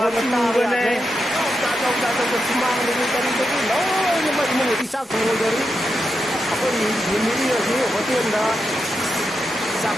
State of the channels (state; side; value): normal; both; correlation 0.86